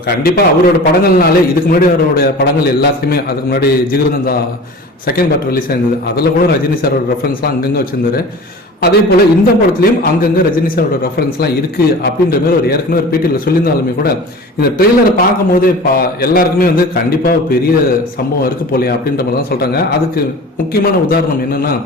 கண்டிப்பாக அவரோட படங்கள்னாலே இதுக்கு முன்னாடி அவரோட படங்கள் எல்லாத்தையுமே, அதுக்கு முன்னாடி ஜிகிருதந்தா செகண்ட் பார்ட் ரிலீஸ் ஆயிருந்தது, அதில் கூட ரஜினி சாரோட ரெஃபரன்ஸ்லாம் அங்கங்கே வச்சிருந்தாரு. அதே போல இந்த படத்துலையும் அங்கங்கே ரஜினி சாரோட ரெஃபரன்ஸ்லாம் இருக்கு அப்படின்ற மாதிரி ஒரு ஏற்கனவே ஒரு பேட்டியில் சொல்லியிருந்தாலுமே கூட இந்த ட்ரெய்லரை பார்க்கும் போதே எல்லாருக்குமே வந்து கண்டிப்பாக பெரிய சம்பவம் இருக்கு போலையா அப்படின்ற மாதிரி தான் சொல்றாங்க. அதுக்கு முக்கியமான உதாரணம் என்னன்னா,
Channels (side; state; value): both; normal; correlation 0.38